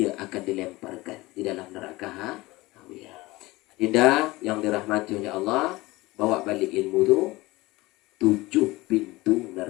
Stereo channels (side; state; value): right; quieter; 20.6 dB